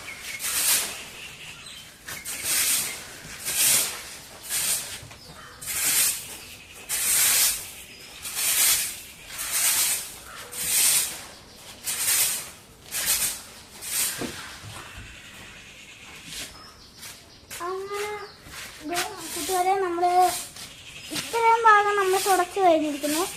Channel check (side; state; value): both; identical; correlation 1.00